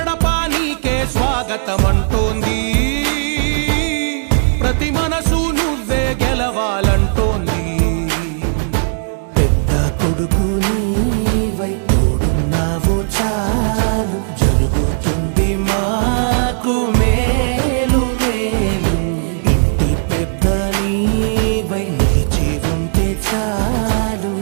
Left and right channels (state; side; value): silent; left; digital silence